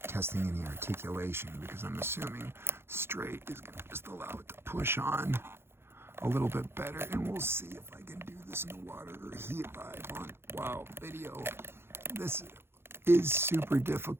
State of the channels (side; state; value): left; late; 0.11 ms